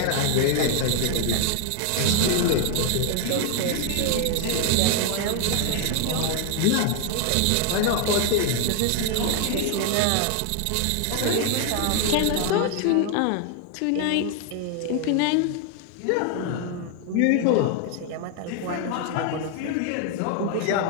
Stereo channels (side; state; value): both; different; correlation 0.00